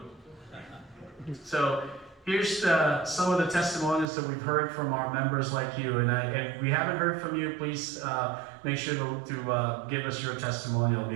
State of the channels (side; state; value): left; drops out; at 4.1 s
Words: So here's some of the testimonies that we've heard from our members like you, and if we haven't heard from you, please make sure to give us your testimony. It'll be